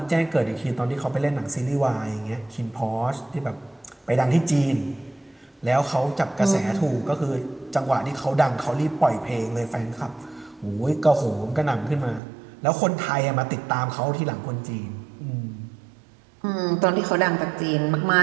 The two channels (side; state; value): left; drops out; at 12.2 s